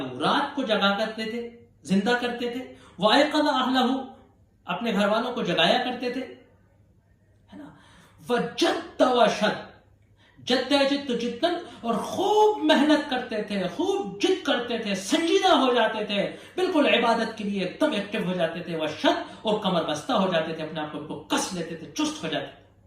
رات کو جگا کرتے تھے، زندہ کرتے تھے. وایقظ اہلہ، اپنے گھر والوں کو جگایا کرتے تھے، ہے نا. وجد وشد، جد جد جدن، اور خوب محنت کرتے تھے، خوب جد کرتے تھے، سنجیدہ ہو جاتے تھے، بالکل عبادت کے لیے ایک دم ایکٹیو ہو جاتے تھے. وشد، اور کمر بستہ ہو جاتے تھے، اپنے آپ کو کس لیتے تھے، چست ہو جاتے تھے.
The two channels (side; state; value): both; identical; correlation 1.00